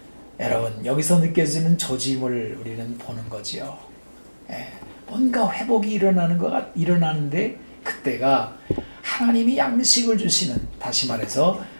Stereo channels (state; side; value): inverted; both; correlation -1.00